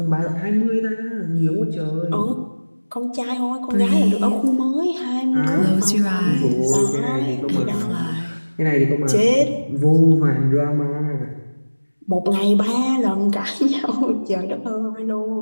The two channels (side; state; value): both; inverted; correlation -1.00